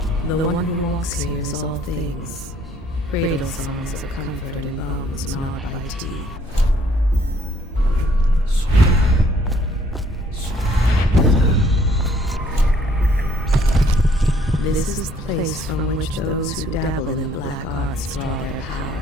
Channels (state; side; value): normal; both; correlation 0.62